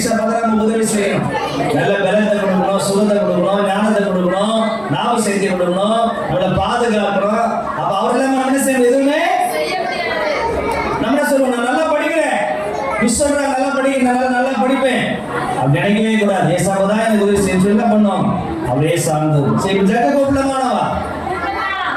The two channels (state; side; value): identical; both; correlation 1.00